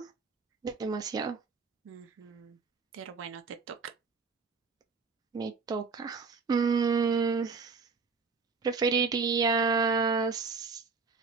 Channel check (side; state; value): left; quieter; 4.9 dB